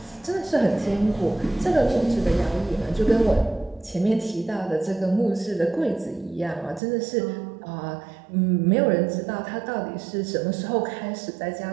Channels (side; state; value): left; drops out; at 6.8 s